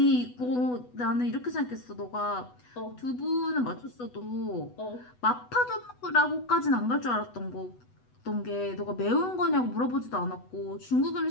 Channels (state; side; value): late; right; 8.1 ms